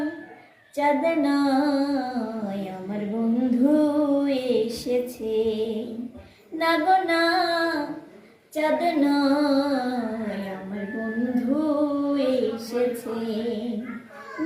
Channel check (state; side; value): identical; both; correlation 1.00